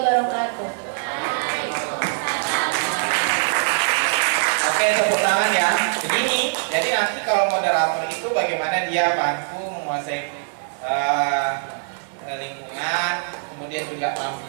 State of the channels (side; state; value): left; silent; digital silence